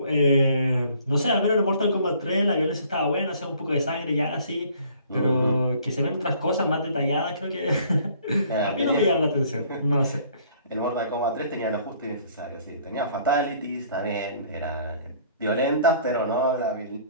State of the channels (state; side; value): inverted; both; correlation -0.57